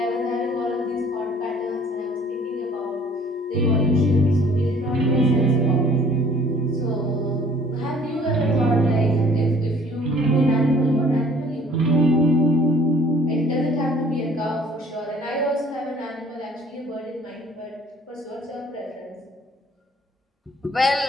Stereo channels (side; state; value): both; normal; correlation 0.55